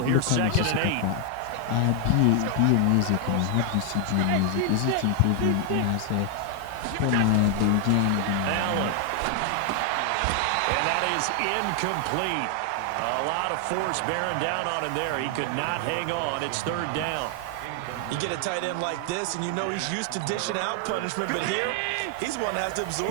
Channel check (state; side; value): different; both; correlation 0.00